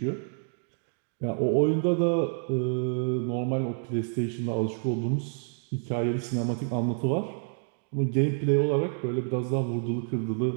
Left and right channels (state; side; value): silent; left; 59 dB below the other